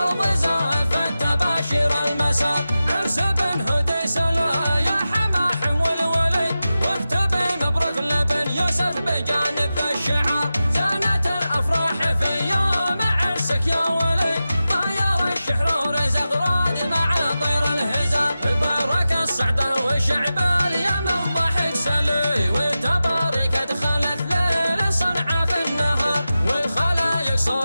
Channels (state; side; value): inverted; both; correlation -0.93